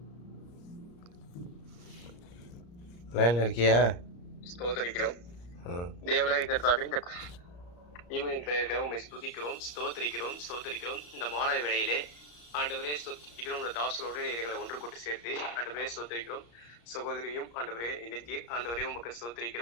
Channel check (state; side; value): late; right; 34 ms